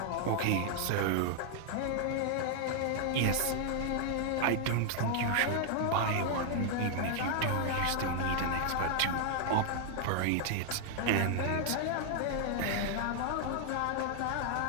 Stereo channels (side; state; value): both; different; correlation 0.00